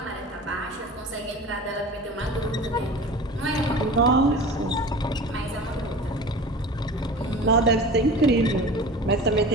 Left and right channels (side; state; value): both; normal; correlation 0.36